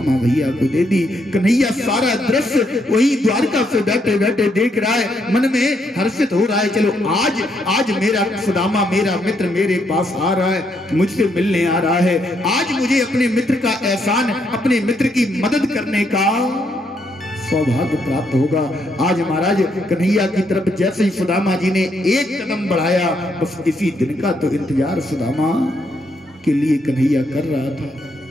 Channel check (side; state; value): both; normal; correlation 0.75